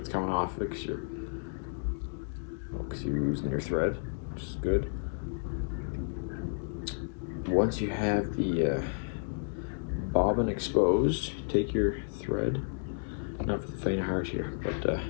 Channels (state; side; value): silent; right; digital silence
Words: coming off it because you're losing your thread, which is good. Once you have the bobbin exposed, take your thread. Not for the faint of heart here, but